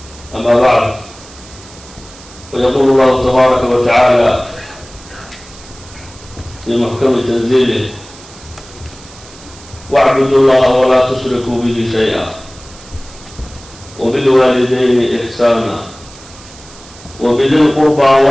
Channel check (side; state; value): right; noise; hiss, 20 dB below the sound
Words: أما بعد فيقول الله تبارك وتعالى في محكم تنزيله واعبدوا الله ولا تشركوا به شيئا وبالوالدين إحسانا وبذي القربى